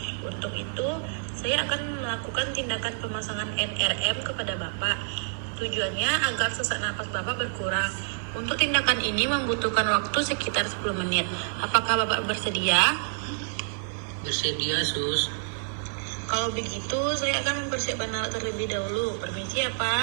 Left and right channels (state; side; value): silent; left; digital silence